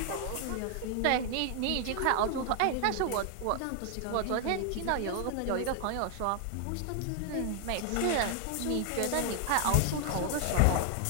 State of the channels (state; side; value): different; both; correlation 0.00